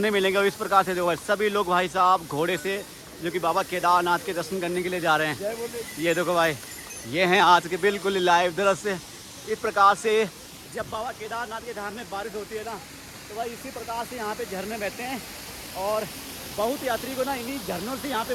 मिलेंगे। और इस प्रकार से देखो सभी लोग भाई साहब घोड़े से जो कि बाबा केदारनाथ के दर्शन करने के लिए जा रहे हैं। ये देखो भाई ये हैं आज के बिल्कुल लाइव दृश्य। इस प्रकार से जब बाबा केदारनाथ के धाम में बारिश होती है ना तो भाई इसी प्रकार से यहाँ पे झरने बहते हैं और बहुत यात्री को ना इन्हीं झरनों से यहाँ पे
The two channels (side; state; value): both; identical; correlation 1.00